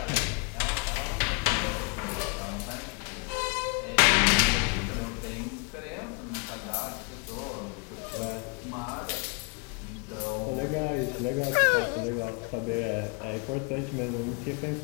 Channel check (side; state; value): right; quieter; 33.0 dB